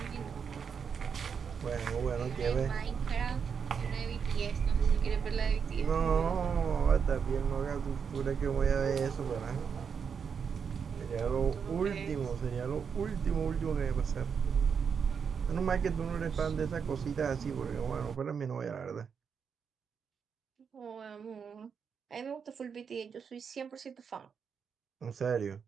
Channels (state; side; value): quieter; left; 6.6 dB